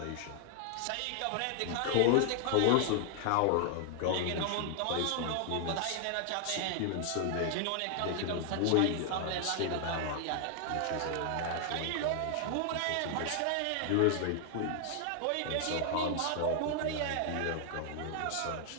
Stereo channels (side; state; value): both; different; correlation 0.00